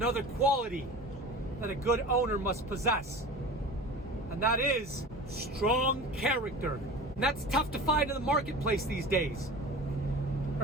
quality that a good owner must possess, and that is strong character. And that's tough to find in the marketplace these days.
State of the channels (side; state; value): both; normal; correlation 0.35